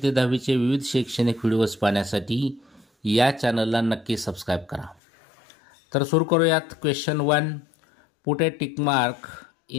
ते 10वीचे विविध शैक्षणिक व्हिडिओज पाहण्यासाठी या चॅनलला नक्की सबस्क्राईब करा. तर सुरू करूयात. Question 1, put a tick mark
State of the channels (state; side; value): drops out; right; at 5.0 s